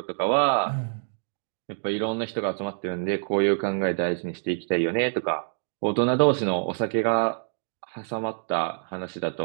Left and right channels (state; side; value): silent; left; digital silence